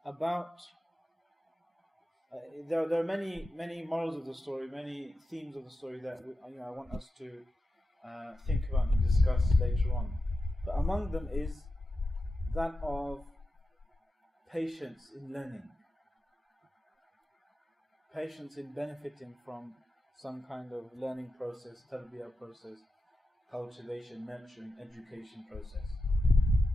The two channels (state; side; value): normal; both; correlation 0.91